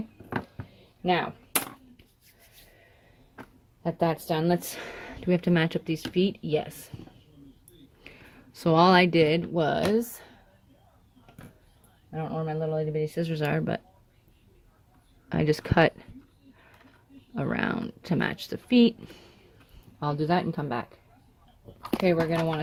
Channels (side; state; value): both; identical; correlation 1.00